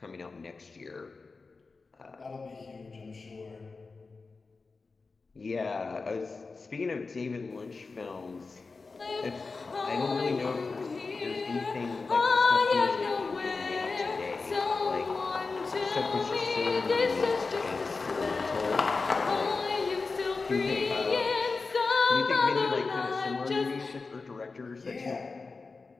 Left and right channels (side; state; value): right; quieter; 4.1 dB